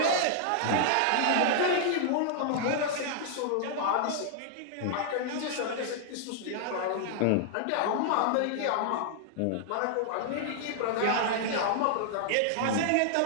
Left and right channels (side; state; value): both; different; correlation -0.01